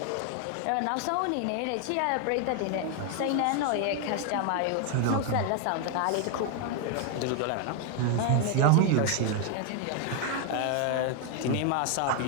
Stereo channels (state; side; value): different; both; correlation 0.01